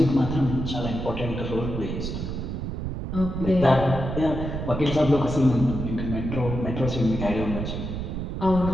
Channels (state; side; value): noise; right; rumble, 4 dB below the sound